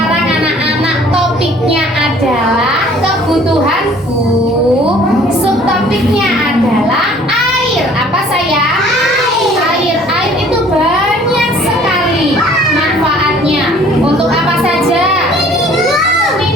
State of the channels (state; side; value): normal; both; correlation 0.54